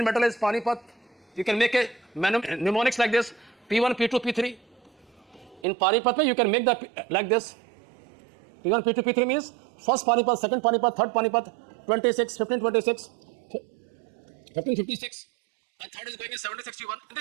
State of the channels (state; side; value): drops out; left; at 5.7 s